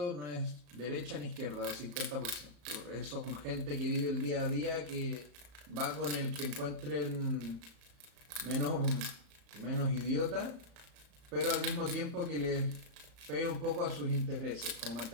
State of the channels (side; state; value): left; late; 35 ms